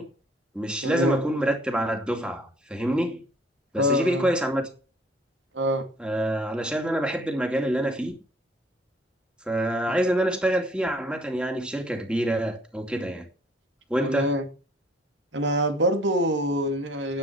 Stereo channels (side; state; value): both; normal; correlation 0.57